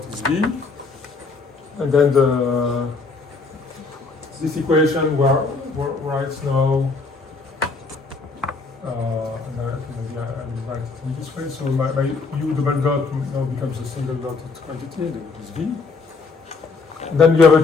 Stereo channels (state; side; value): quieter; right; 4.2 dB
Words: is V. And then this equation writes now, and I will write it in this way. So my U double dot now becomes a single dotted quantity, which is V. And then you have a